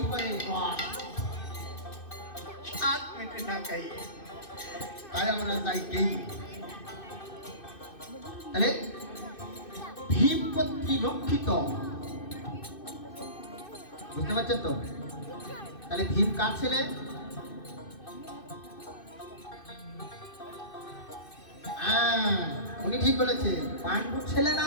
পরে রস স্বাদ মেটে না খাই। তাই আমরা যাই গেই। তাহলে ভীম কর্তৃক রক্ষিত, বুঝতে পারছেন তো? তাহলে ভীম কার ছেলে? উনি ঠিক বলেছে, পাণ্ডুর ছেলে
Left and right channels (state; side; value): late; right; 2.6 ms